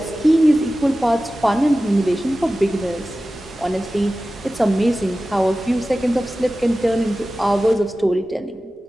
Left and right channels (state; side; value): normal; both; correlation 0.95